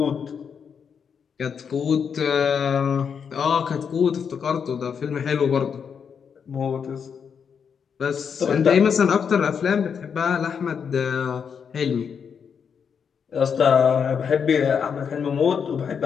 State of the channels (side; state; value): right; quieter; 6.8 dB